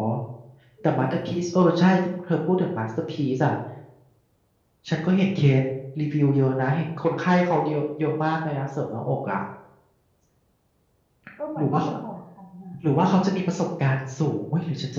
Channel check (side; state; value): both; identical; correlation 1.00